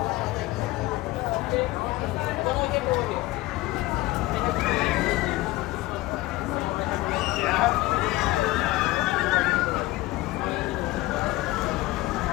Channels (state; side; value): quieter; right; 19.0 dB